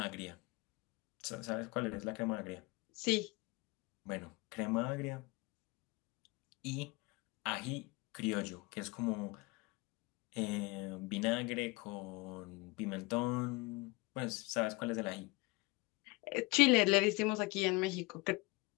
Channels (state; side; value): quieter; right; 24.7 dB